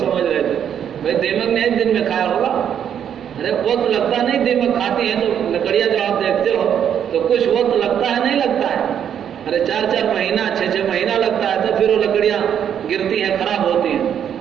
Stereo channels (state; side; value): quieter; left; 8.9 dB